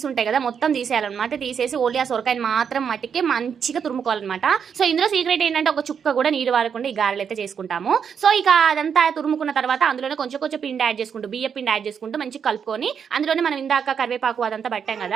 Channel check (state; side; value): quieter; left; 7.2 dB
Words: ఉంటాయి కదా, మొత్తం తీసేయాలన్నమాట. తీసేసి ఓన్లీ ఆ సొరకాయని మాత్రం మట్టికి మంచిగా తురుముకోవాలన్నమాట. సో ఇందులో సీక్రెట్ ఏంటంటే ఒక చుక్క కూడా నీరు వారకుండా ఈ గారెలు అయితే చేసుకుంటాము. సో ఇక అదంతా తురుముకున్న తర్వాత అందులోనే కొంచెం కొంచెం పిండి యాడ్ చేసుకుంటూ, బియ్య పిండి యాడ్ చేసుకుంటూ మంచిగా కలుపుకొని అందులోనే మనం ఇందాక కరివేపాకు అదంతా పట్టాం